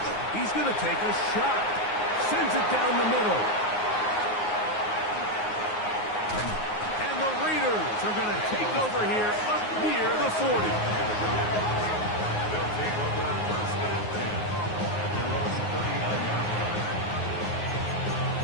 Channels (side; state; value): right; late; 9.5 ms